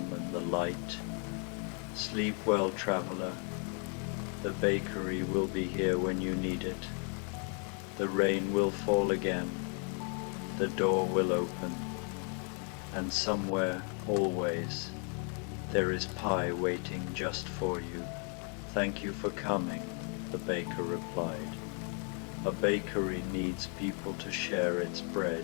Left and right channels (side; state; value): right; quieter; 39.9 dB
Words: and the light. Sleep well, traveler. The bakery will be here when you need it. The rain will fall again. The door will open. And somewhere, always, there is pie waiting just for you. Thank you for coming, the baker replied. A bakery needs people to share its